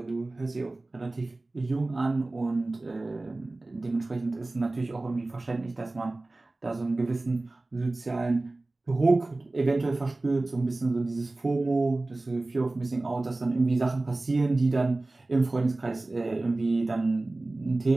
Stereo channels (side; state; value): left; quieter; 3.0 dB